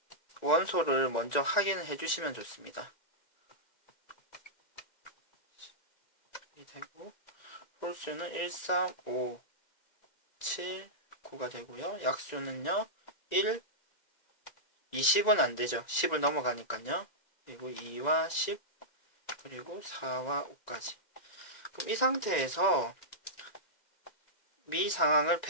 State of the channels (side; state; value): right; late; 1.9 ms